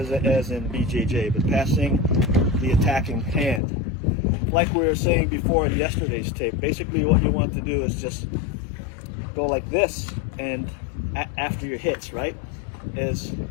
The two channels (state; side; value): drops out; right; at 3.6 s